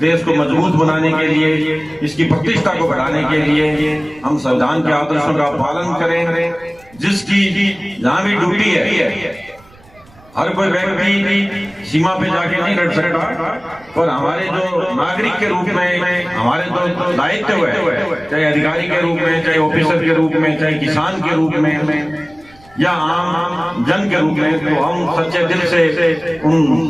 को मजबूत बनाने के लिए, इसकी प्रतिष्ठा को बढ़ाने के लिए हम संविधान के आदर्शों का पालन करें। जिसकी जहाँ भी ड्यूटी है, हर कोई व्यक्ति सीमा पे जाके नहीं लड़ सकता, पर हमारे जो नागरिक के रूप में हमारे जो दायित्व है, चाहे अधिकारी के रूप में, चाहे ऑफिसर के रूप में, चाहे किसान के रूप में या आम जन के रूप में, तो हम सच्चे दिल से उन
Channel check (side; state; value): right; noise; rumble, 27 dB below the sound